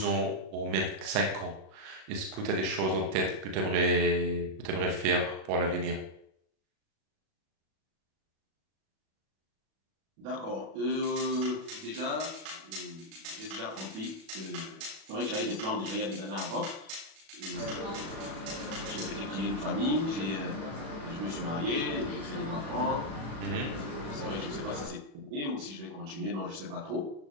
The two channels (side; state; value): left; late; 37 ms